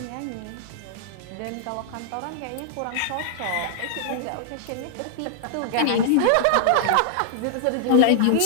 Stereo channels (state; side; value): different; both; correlation -0.01